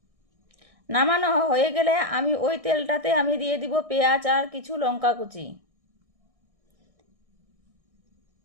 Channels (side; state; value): left; late; 1.6 ms